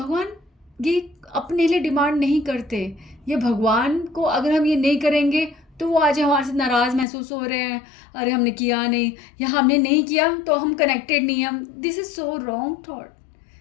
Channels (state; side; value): drops out; right; at 7.1 s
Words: ये अपने लिए डिमांड नहीं करते। ये भगवान को अगर हम ये नहीं करेंगे तो वो आज हमारे से नाराज़ महसूस हो रहे हैं, अरे हमने किया नहीं, या हमने नहीं किया तो हम कनेक्टेड नहीं हैं। This is so wrong